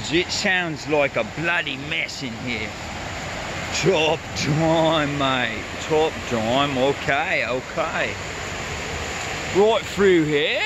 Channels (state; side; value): identical; both; correlation 1.00